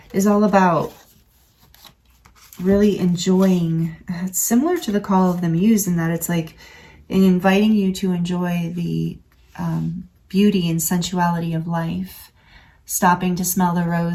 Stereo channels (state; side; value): identical; both; correlation 1.00